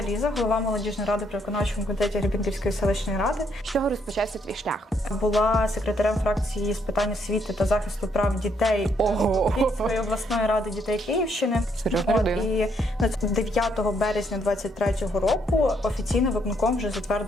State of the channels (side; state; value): both; normal; correlation 0.72